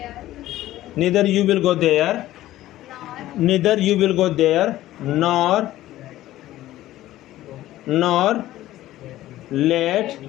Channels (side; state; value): right; quieter; 14.9 dB